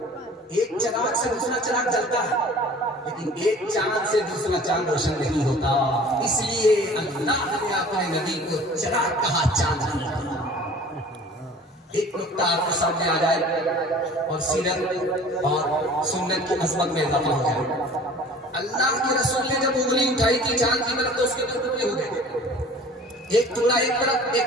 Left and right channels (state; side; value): normal; both; correlation 0.46